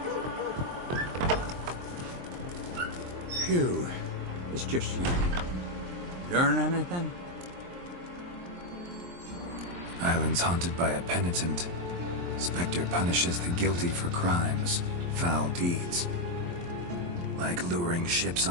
Phew. It's just you. Learn anything? Island's haunted by a penitent. Spectre punishes the guilty for crimes, foul deeds. Like luring ships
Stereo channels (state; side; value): late; left; 23 ms